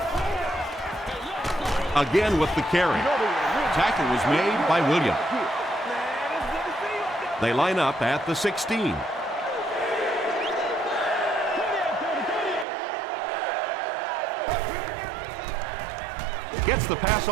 Again with the carry. Tackle was made by Williams. They line up at the 16. Gets the pass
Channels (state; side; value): drops out; left; at 12.7 s